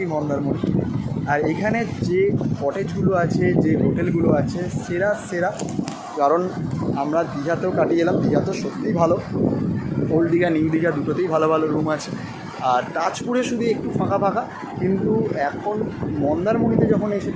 মন্দারমণি। আর এখানে যে কটেজগুলো আছে, যে হোটেলগুলো আছে, সেরা সেরা। কারণ আমরা দীঘাতেও কাটিয়ে এলাম, দীঘা তো সত্যিই ভালো, ওল্ড দীঘা নিউ দীঘা দুটোতেই ভালো ভালো রুম আছে। আর তাজপুরে শুধু একটু ফাঁকা ফাঁকা, কিন্তু এখন মন্দারমণিতে যখন এসে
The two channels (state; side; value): identical; both; correlation 1.00